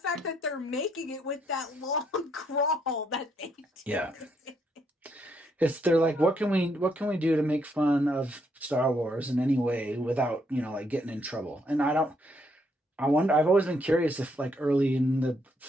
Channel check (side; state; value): both; normal; correlation 0.74